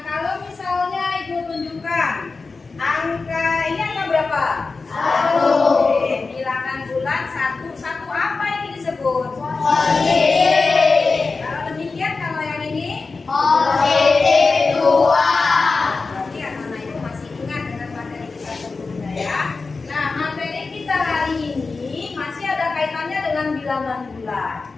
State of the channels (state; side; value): quieter; right; 4.1 dB